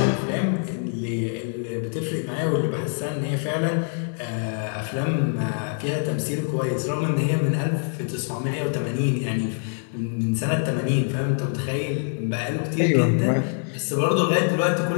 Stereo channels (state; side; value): silent; right; 62 dB below the other